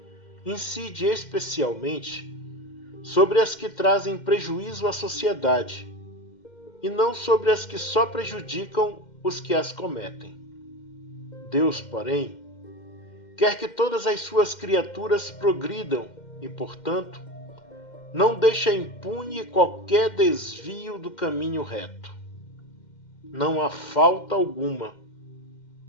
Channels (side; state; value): right; late; 2.1 ms